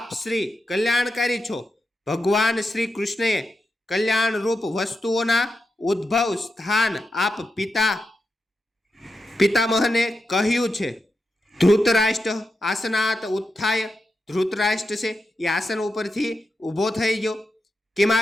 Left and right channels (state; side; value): normal; both; correlation 0.88